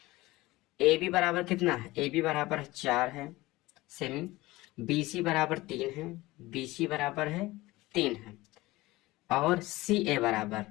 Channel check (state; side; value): quieter; right; 19.5 dB